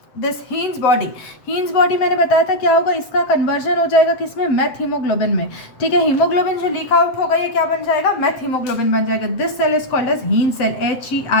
दिस हीन्स बॉडी मैंने बताया था क्या होगा, इसका कन्वर्जन हो जाएगा किसमें? मेथ हीमोग्लोबिन में। ठीक है, हीमोग्लोबिन जो लीक आउट होगा ये क्या बन जाएगा? मेथ हीमोग्लोबिन बन जाएगा। This cell is called as Heinz cell,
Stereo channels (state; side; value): late; right; 7.6 ms